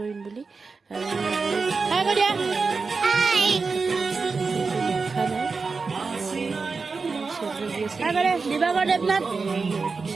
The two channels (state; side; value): quieter; left; 4.5 dB